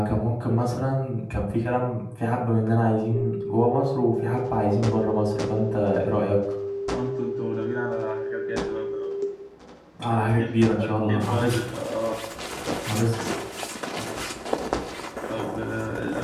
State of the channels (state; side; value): identical; both; correlation 1.00